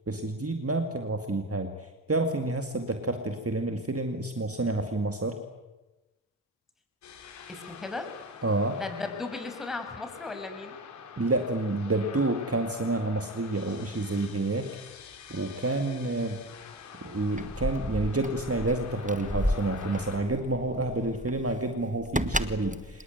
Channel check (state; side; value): normal; both; correlation 0.29